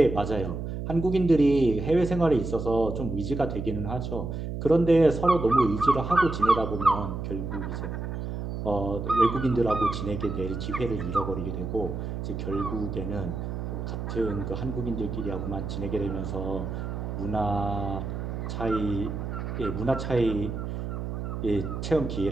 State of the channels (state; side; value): noise; right; hum, 5 dB below the sound